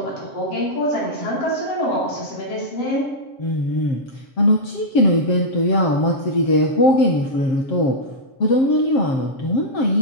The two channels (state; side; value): late; right; 7.5 ms